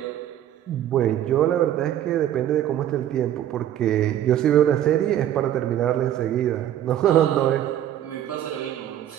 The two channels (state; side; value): quieter; left; 11.5 dB